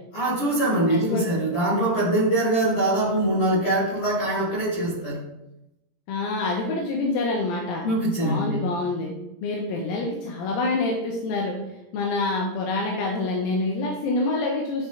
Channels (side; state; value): right; late; 17 ms